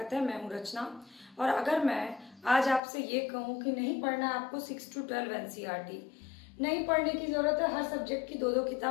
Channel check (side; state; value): right; drops out; at 2.8 s